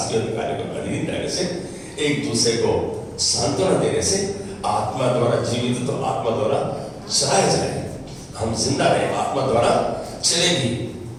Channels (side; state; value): both; identical; correlation 1.00